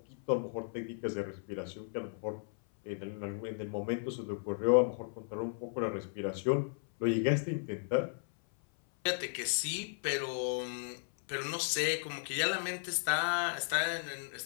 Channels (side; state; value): right; silent; 54 dB below the other